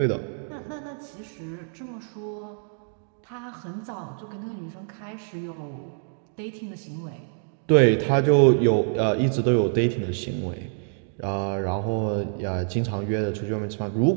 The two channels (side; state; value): left; silent; digital silence